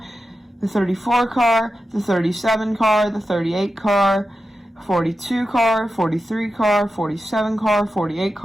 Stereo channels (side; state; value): both; normal; correlation 0.91